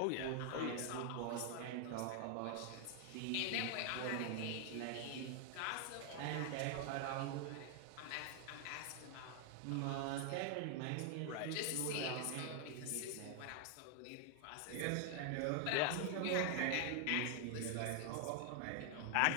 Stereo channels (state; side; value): different; both; correlation 0.00